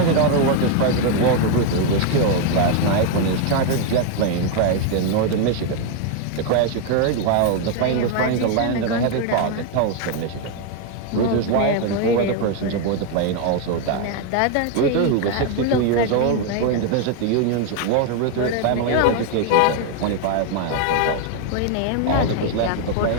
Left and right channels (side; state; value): both; different; correlation 0.01